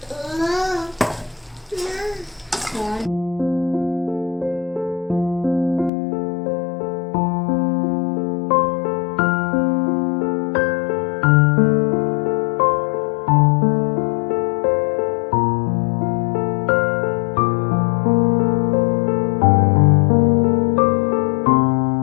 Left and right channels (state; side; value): drops out; right; at 5.9 s